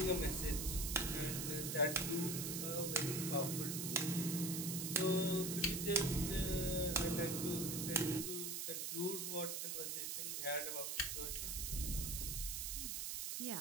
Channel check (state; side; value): noise; right; hiss, 2 dB below the sound